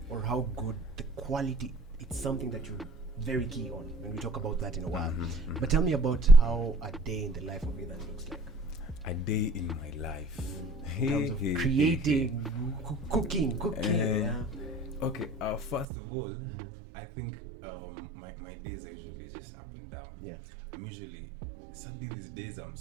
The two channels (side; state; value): left; drops out; at 15.9 s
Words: or how good the quality. It's something that you're very key on when we talk about that in a while. But tell me about how a day in the life of Ethan looks like. A day in my life. In terms of creating, cooking. Okay, first of all, I think my days are usually just up and down. I'm usually, sadly these days I'm